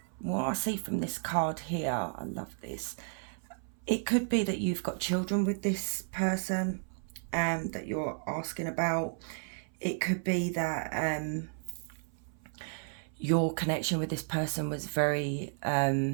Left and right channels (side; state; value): left; silent; 56 dB below the other